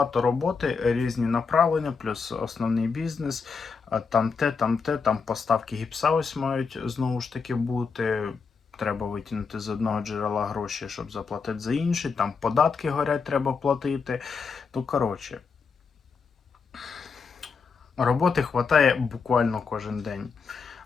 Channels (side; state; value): right; quieter; 5.3 dB